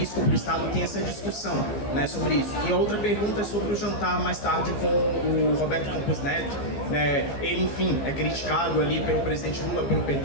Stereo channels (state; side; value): late; right; 15 ms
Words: para o Estado, tem essa discussão, né, sobre isso. E a outra pergunta é sobre o jantar mais tarde com o Roberto Campos Neto, né, ele, enfim, é criticado ali pelo presidente Lula, pelo